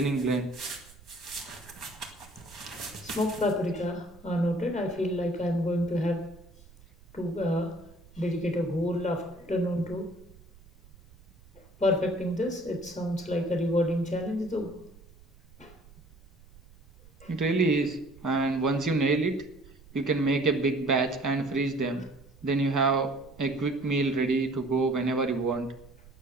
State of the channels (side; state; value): right; noise; rumble, 23 dB below the sound